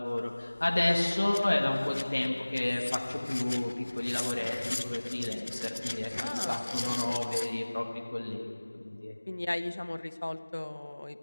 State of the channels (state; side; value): inverted; both; correlation -1.00